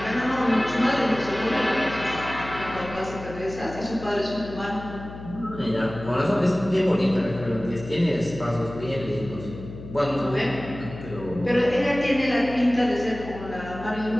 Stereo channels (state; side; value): noise; left; hum, 13 dB below the sound